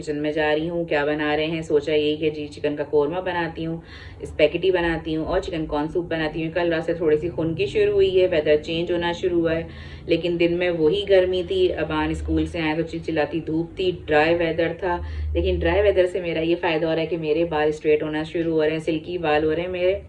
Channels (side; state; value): both; identical; correlation 1.00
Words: में जा रही हूँ, क्या बना रहे हैं सोचा यही कि जी चिकन का कोरमा बनाती हूँ, स्पैगेटी बनाती हूँ और चिकन कॉर्न सूप बनाती हूँ। कल रात से थोड़ी सी खुनकी शुरू हुई है, वेदर चेंज होना शुरू हुआ है, लेकिन दिन में वही गर्मी थी। अबान स्कूल से आए तो चिलचिलाती धूप थी, ड्राई वेदर था। लेकिन ड्राई वेदर से मेरा ये फ़ायदा हो रहा है कि मेरे बाल स्ट्रेट होना शुरू हो रहे हैं, सिल्की बाल हो रहे हैं मेरे,